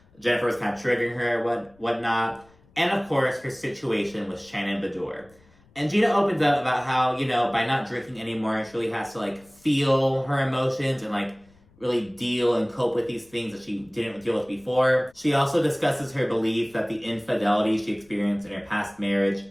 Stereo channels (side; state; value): left; noise; rumble, 30 dB below the sound